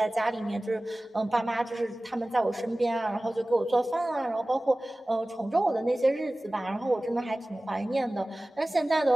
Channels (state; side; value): normal; both; correlation 0.98